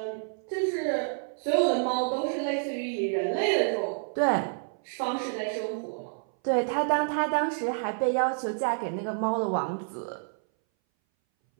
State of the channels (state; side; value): silent; left; 59 dB below the other